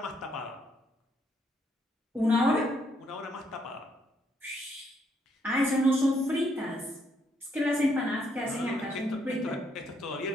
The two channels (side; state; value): both; normal; correlation 0.73